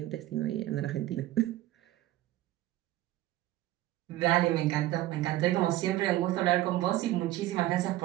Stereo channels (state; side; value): quieter; left; 15.3 dB